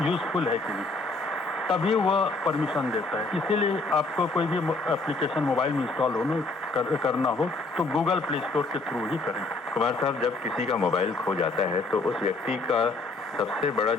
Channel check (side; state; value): right; quieter; 3.3 dB